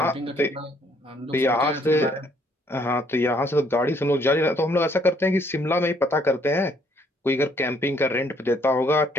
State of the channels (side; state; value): both; normal; correlation 0.66